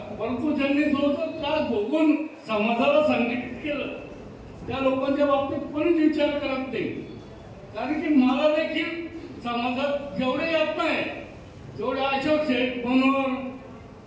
परंतु ज्यांनी जो त्रास भोगून समाजाला संघटित केलं त्या लोकांच्या बाबतीत कोणीच विचार करत नाही. कारण की मला देखील समाजात जेवढे येत नाही तेवढे अशोक शेठ, मनोहर,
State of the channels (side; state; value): both; identical; correlation 1.00